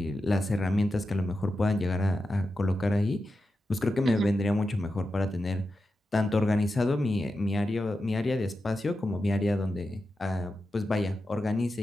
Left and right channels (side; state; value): both; normal; correlation 0.90